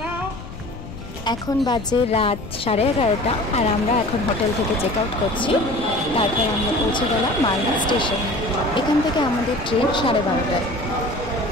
এখন বাজে রাত 11:30 আর আমরা এখন হোটেল থেকে চেক আউট করছি। তারপর আমরা পৌঁছে গেলাম মালদা স্টেশন। এখান থেকে আমাদের ট্রেন 12:30টায়।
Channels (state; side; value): noise; left; rumble, 12 dB below the sound